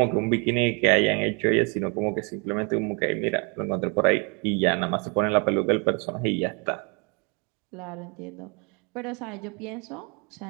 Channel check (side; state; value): left; quieter; 34.2 dB